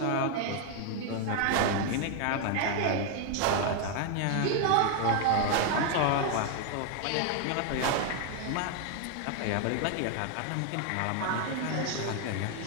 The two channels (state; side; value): different; both; correlation 0.00